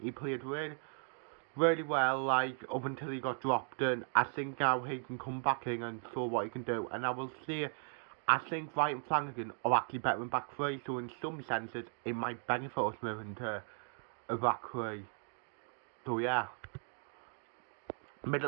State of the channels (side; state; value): left; silent; 53 dB below the other